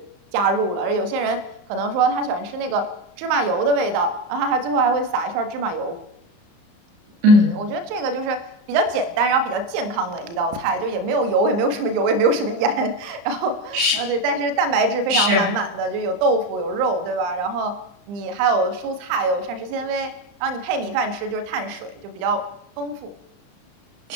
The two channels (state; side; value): late; left; 34 ms